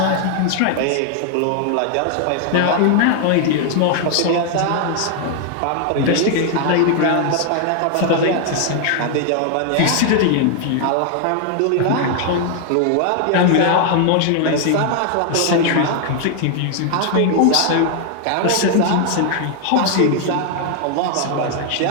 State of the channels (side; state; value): both; different; correlation 0.00